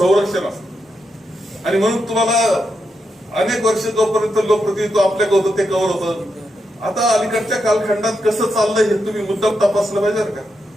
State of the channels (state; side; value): normal; both; correlation 0.84